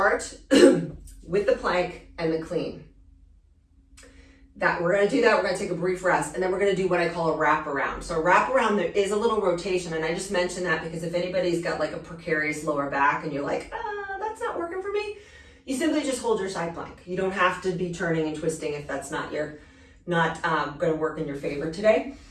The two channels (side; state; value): both; identical; correlation 1.00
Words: with the plank and the clean. We're going to do that. We're going to take a brief rest, and then we're going to do what I call a wrap around. So a wrap around, there is a little rotation, and I just mentioned that because if anybody's got like a precarious lower back and you're like, that's not working for me, you simply just hold your side plank. You don't have to be turning and twisting if that's not going to work in your favor today.